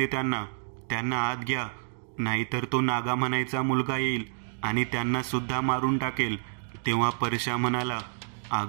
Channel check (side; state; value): left; silent; digital silence